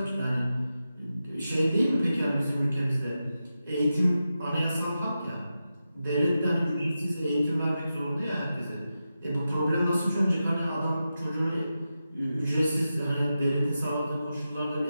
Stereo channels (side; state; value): both; inverted; correlation -0.90